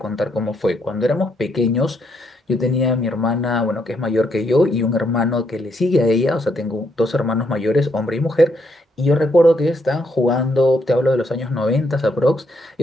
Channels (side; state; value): both; normal; correlation 0.75